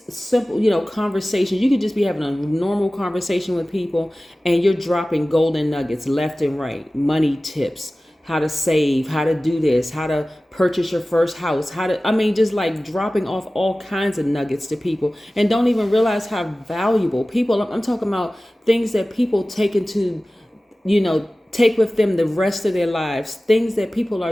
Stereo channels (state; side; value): normal; both; correlation 0.97